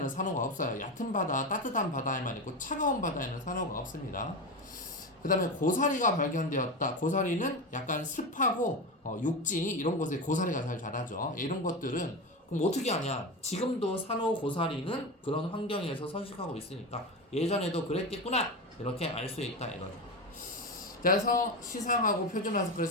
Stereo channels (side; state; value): both; normal; correlation 0.20